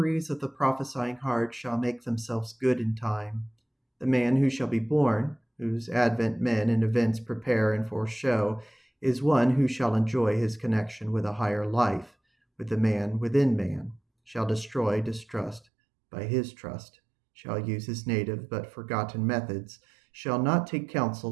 of the prophesying heart shall make themselves good in time, the man who shall be born, whose advent men and events prepare and foreshow, is one who shall enjoy his connection with a higher life, with the man within man, shall destroy distrust by his trust, shall use his native but forgotten methods, shall not take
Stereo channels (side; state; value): left; drops out; at 15.7 s